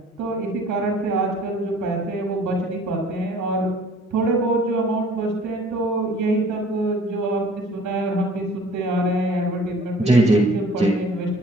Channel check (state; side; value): normal; both; correlation 0.52